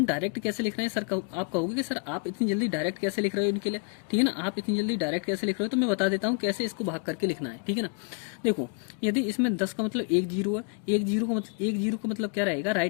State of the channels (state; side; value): quieter; right; 36.1 dB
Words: डायरेक्ट कैसे लिख रहे हैं सर, आप कहोगे कि सर आप इतनी जल्दी डायरेक्ट कैसे लिख रहे हो इनके लिए, ठीक है ना, आप इतनी जल्दी डायरेक्ट कैसे लिख रहे हो, तो मैं बता देता हूँ कैसे इसको भाग करके लिखना है, ठीक है ना। देखो यदि इसमें 10 का मतलब 1 जीरो है, 1 जीरो का मतलब क्या रहेगा,